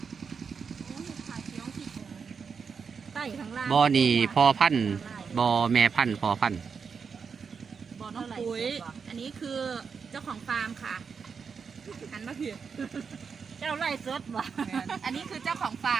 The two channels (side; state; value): left; quieter; 5.9 dB